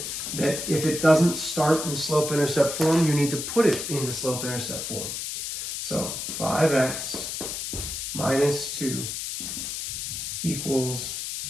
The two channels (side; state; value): left; noise; hiss, 5 dB below the sound